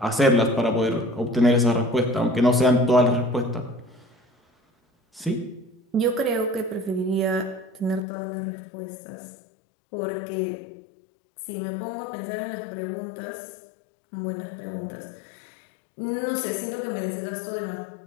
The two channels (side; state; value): right; drops out; at 8.1 s